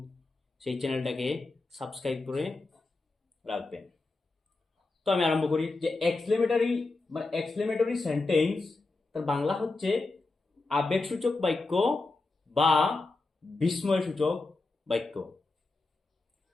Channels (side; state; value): right; quieter; 3.4 dB